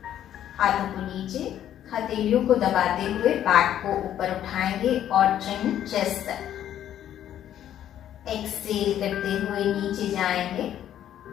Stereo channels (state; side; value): quieter; right; 11.0 dB